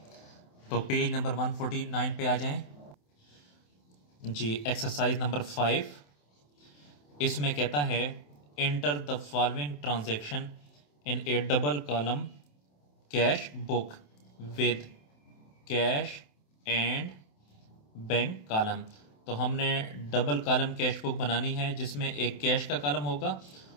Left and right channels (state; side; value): late; right; 27 ms